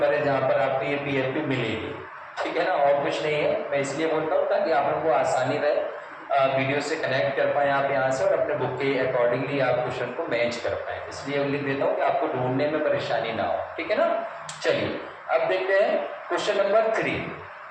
है जहां पर आपको ये पीएफपी मिलेगी। ठीक है ना, और कुछ नहीं है। मैं इसलिए बोलता हूँ ताकि आप लोगों को आसानी रहे, वीडियो से कनेक्ट कर पाए आप यहाँ से और अपने बुक के अकॉर्डिंगली आप क्वेश्चन को मैच कर पाए। इसलिए लिख देता हूँ कि आपको ढूंढने में परेशानी ना हो। ठीक है ना, चलिए अब देखते हैं क्वेश्चन नंबर 3।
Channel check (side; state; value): both; identical; correlation 1.00